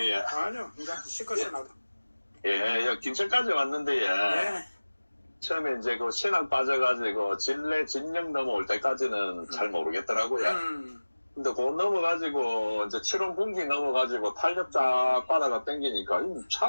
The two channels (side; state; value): both; inverted; correlation -1.00